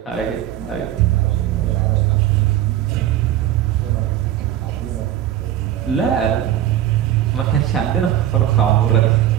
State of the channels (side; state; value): left; quieter; 12.1 dB